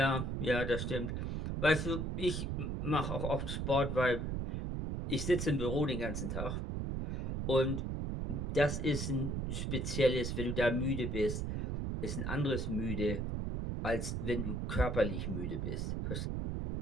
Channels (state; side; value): noise; right; rumble, 2 dB below the sound